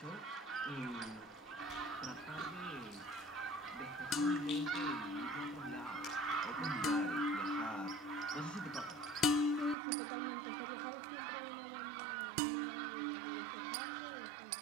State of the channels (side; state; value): left; drops out; at 9.8 s